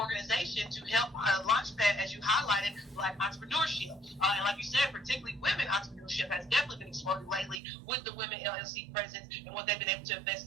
to help launchpad, as you highlighted, Black entrepreneurship. And like you said, particularly women entrepreneurship has definitely been exploding lately with the Women LLC presence and what they've been able to invest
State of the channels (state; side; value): drops out; left; at 7.6 s